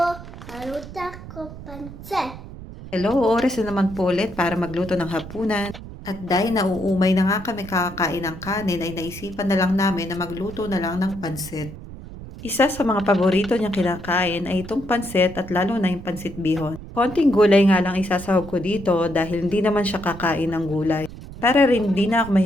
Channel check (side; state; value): right; noise; rumble, 14 dB below the sound